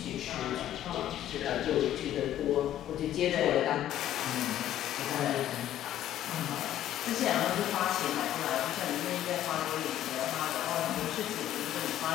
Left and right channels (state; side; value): quieter; right; 12.1 dB